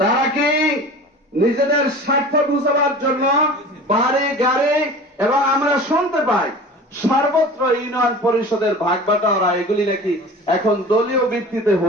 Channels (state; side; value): normal; both; correlation 0.38